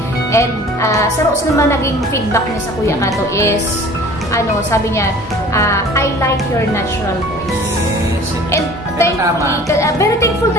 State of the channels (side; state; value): both; normal; correlation 0.46